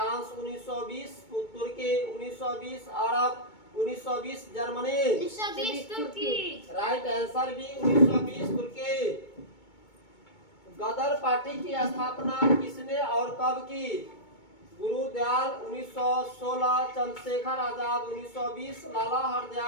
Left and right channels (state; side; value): late; right; 2.2 ms